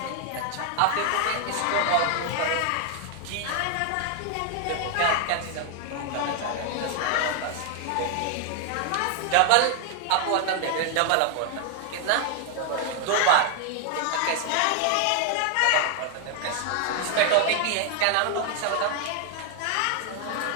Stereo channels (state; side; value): different; both; correlation 0.00